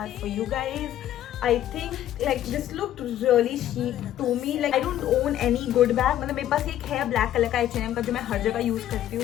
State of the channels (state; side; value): quieter; right; 12.1 dB